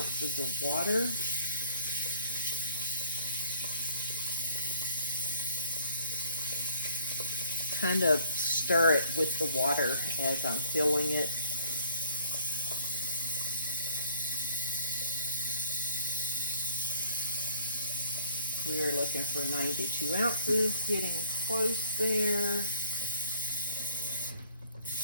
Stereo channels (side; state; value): both; inverted; correlation -0.61